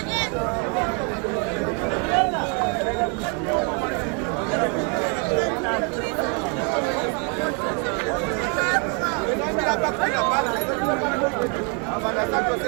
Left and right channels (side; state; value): left; quieter; 34.6 dB